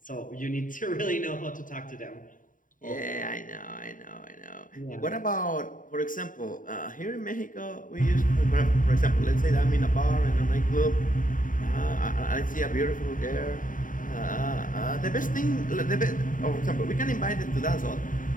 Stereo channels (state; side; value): late; right; 0.39 ms